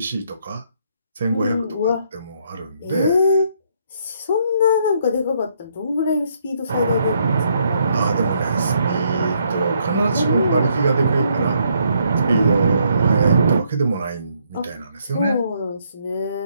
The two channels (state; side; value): inverted; both; correlation -0.71